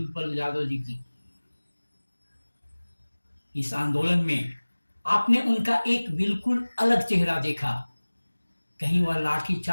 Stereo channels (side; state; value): both; inverted; correlation -1.00